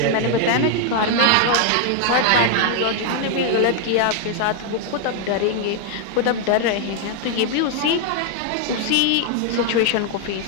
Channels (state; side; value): different; both; correlation 0.00